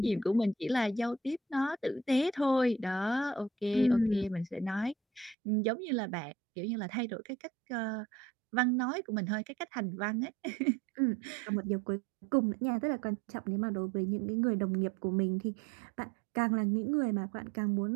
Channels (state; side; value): drops out; left; at 5.4 s